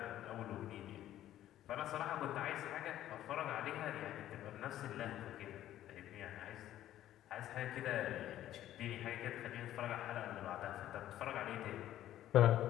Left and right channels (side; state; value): right; quieter; 12.7 dB